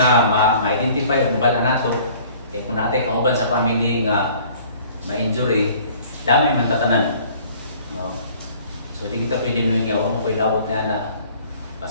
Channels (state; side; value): inverted; both; correlation -0.52